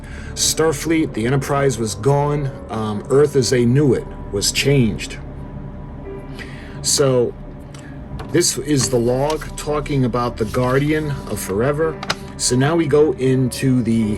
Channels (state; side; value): identical; both; correlation 1.00